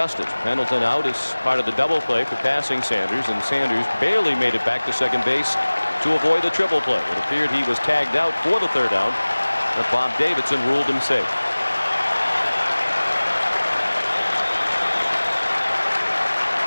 Pendleton out as part of the double play for passing Sanders, and Sanders barely made it back to second base to avoid the triple play. It appeared he was tagged out for the 3rd out, but Bob Davidson ruled him safe.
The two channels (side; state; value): both; inverted; correlation -1.00